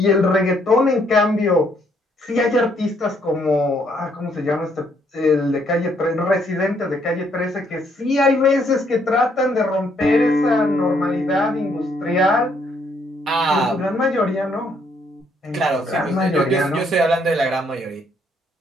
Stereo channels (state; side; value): normal; both; correlation 0.70